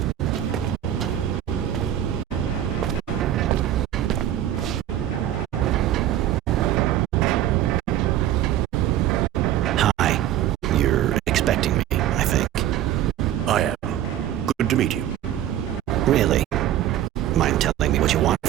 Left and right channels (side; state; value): left; quieter; 12.0 dB